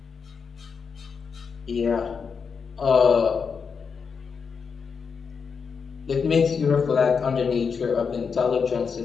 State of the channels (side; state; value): right; quieter; 5.8 dB